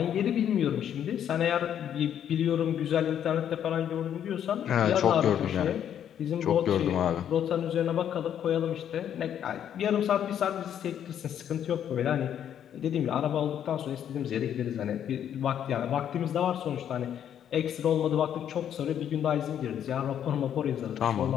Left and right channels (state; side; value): quieter; right; 9.6 dB